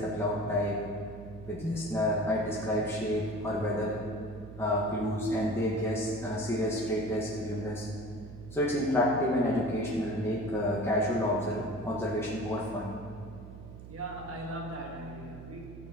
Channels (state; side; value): noise; right; hum, 14 dB below the sound